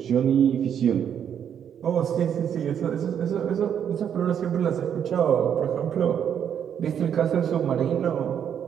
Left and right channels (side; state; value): left; quieter; 8.7 dB